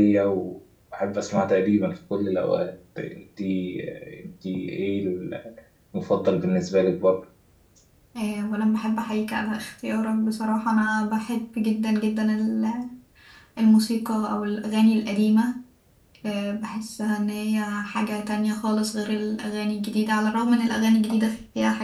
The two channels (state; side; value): identical; both; correlation 1.00